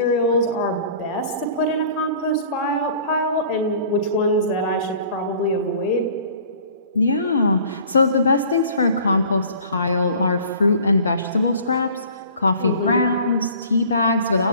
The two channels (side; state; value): both; inverted; correlation -0.48